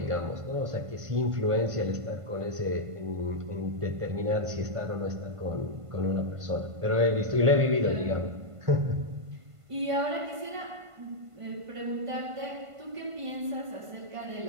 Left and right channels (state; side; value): late; left; 1.5 ms